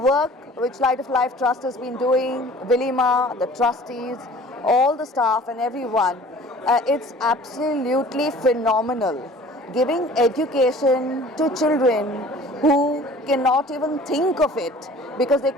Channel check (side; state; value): both; normal; correlation 0.47